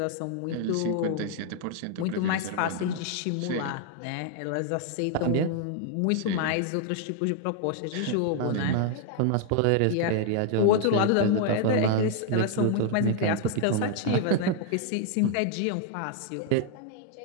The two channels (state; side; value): different; both; correlation 0.00